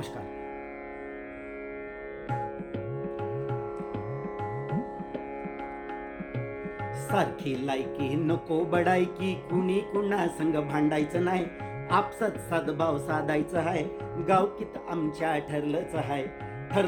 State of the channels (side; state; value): both; identical; correlation 1.00